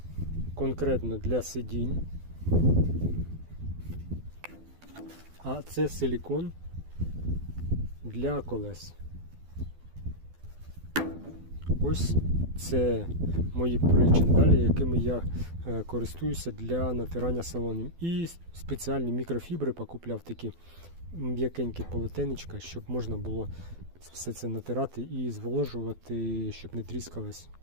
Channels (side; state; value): left; late; 12 ms